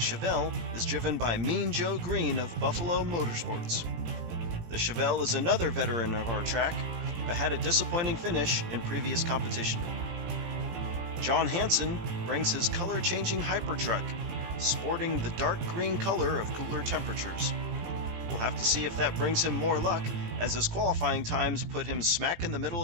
is driven by Mean Joe Green of Buffalo Motorsports. The Chevelle is another veteran of our track, but had a disappointing finish in previous competition. John Hansen brings his color-changing Hypertruck, sporting the dark green color of cooler temperatures. We'll have to see if that brings him more luck, as his qualifying times put him smack in the middle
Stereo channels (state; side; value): late; left; 17 ms